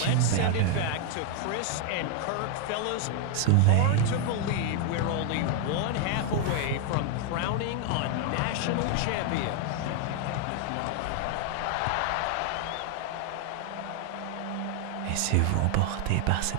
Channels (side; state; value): both; different; correlation 0.00